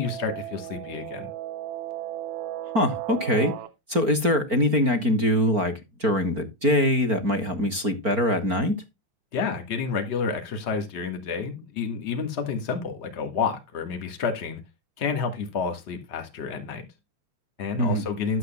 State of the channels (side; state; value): left; late; 4.4 ms